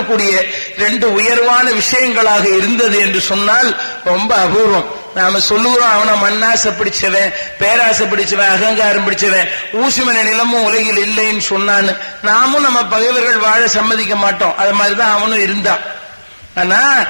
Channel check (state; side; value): inverted; both; correlation -1.00